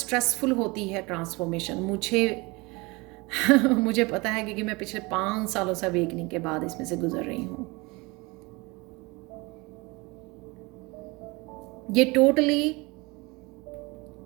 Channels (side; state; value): left; quieter; 25.2 dB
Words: होती है ट्रांसफॉर्मेशन। मुझे पता है क्योंकि मैं पिछले 5 सालों से अवेकनिंग के बाद इसमें से गुजर रही हूँ। ये टोटली